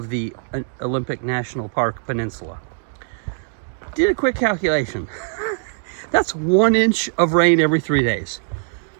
the Olympic National Park Peninsula. Did a quick calculation. That's 1 inch of rain every 3 days.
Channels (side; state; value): left; silent; digital silence